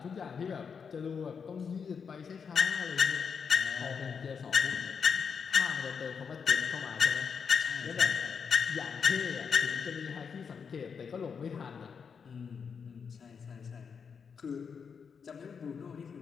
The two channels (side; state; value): right; quieter; 6.3 dB